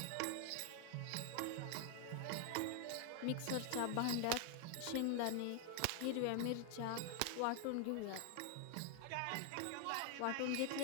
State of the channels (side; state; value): both; different; correlation 0.00